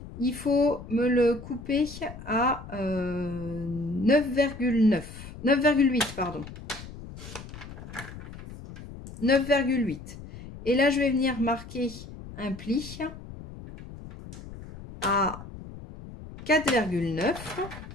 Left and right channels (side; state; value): left; noise; rumble, 14 dB below the sound